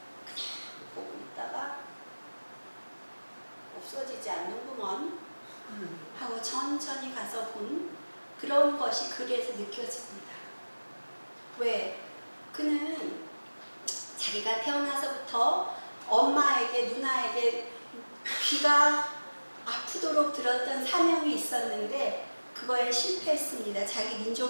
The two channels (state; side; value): inverted; both; correlation -1.00